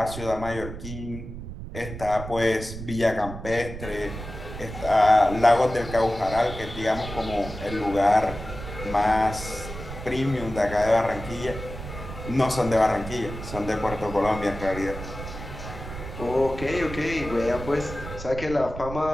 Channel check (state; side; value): noise; right; rumble, 10 dB below the sound